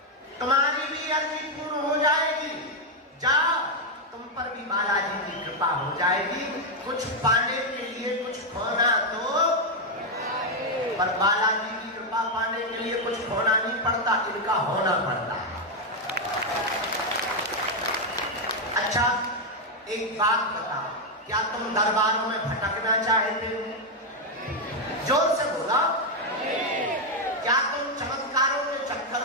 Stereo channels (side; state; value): both; normal; correlation 0.02